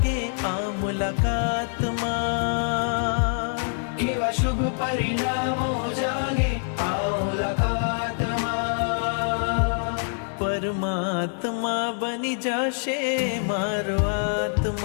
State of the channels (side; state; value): right; silent; 62 dB below the other